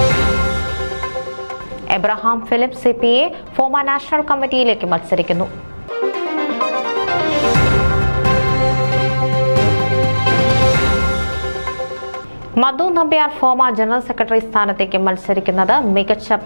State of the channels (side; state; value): both; inverted; correlation -1.00